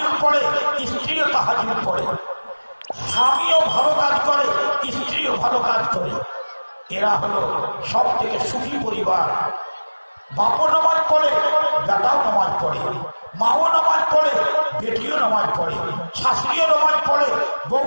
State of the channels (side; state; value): both; inverted; correlation -1.00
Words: পড়ে, স্ত্রীও তাহাজ্জুদ পড়ে, স্বামীও ভালো কাজ করে, স্ত্রীও ভালো কাজ করে। এরা হলো সব থেকে সুখী পরিবার। বাপও নামাজ পড়ে, বেটাও নামাজ পড়ে, মাও নামাজ পড়ে, বেটিও নামাজ পড়ে, শাশুড়িও নামাজ পড়ে,